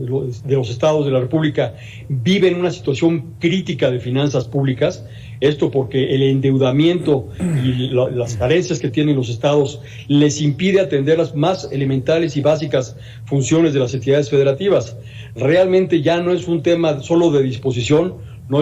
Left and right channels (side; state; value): both; identical; correlation 1.00